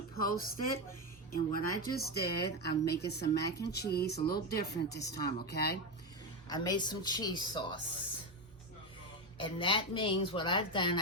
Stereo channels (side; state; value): both; normal; correlation 0.12